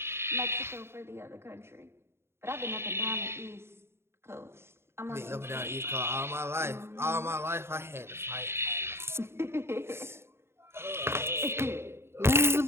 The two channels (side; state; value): left; late; 0.12 ms